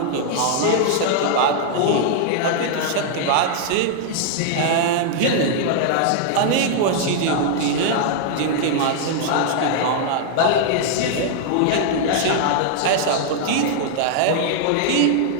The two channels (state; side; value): different; both; correlation -0.01